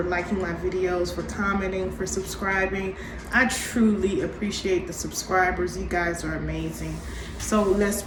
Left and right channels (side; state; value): both; identical; correlation 1.00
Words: liking my videos, for commenting, for subscribing. I truly appreciate the subscribers. You guys are amazing. So let's